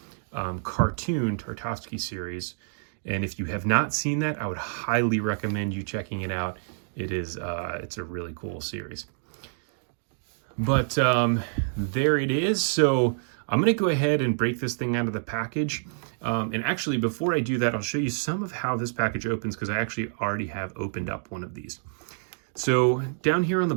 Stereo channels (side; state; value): left; silent; digital silence